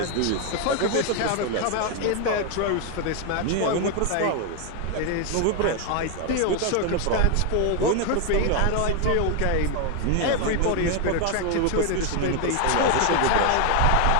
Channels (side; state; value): both; different; correlation 0.01